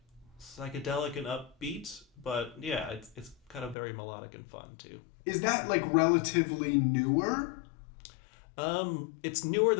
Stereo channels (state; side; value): drops out; right; at 3.8 s